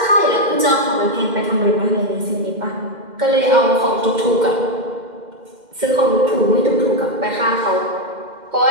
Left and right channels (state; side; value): late; left; 2.1 ms